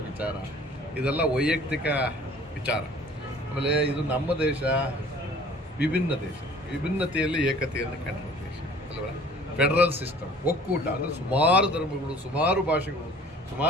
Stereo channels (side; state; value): both; normal; correlation 0.50